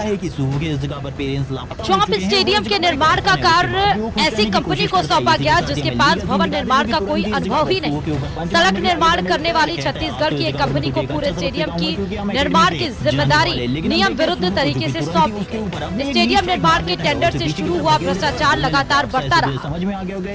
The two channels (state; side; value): identical; both; correlation 1.00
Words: है कि सूह के इस जगह पर पेरेंट्स चौंप स्टेडियम के निर्माण का कार्य ऐसी कंपनी को सौंपा गया जिसके पास भवन निर्माण का कोई अनुभव ही नहीं। सड़क निर्माण करने वाली छत्तीसगढ़ की एक कंपनी को पूरे स्टेडियम की निर्माण की जिम्मेदारी नियम विरुद्ध तरीके से सौंपी गई। स्टेडियम निर्माण के टेंडर से शुरू हुआ भ्रष्टाचार लगातार बढ़ता रहा। समझ में आ गया होगा